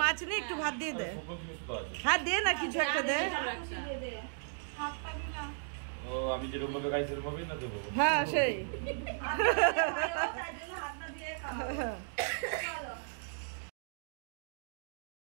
মাছ নে, একটু ভাত দিয়ে দে। হ্যাঁ দে না, কিছু একটা দে। ও আমি যেরকম ভাবে খাই সেরকম ভাবেই না দেবো। হ্যাঁ সেই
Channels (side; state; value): left; silent; digital silence